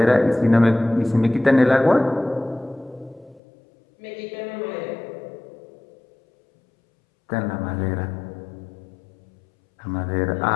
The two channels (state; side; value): drops out; right; at 3.4 s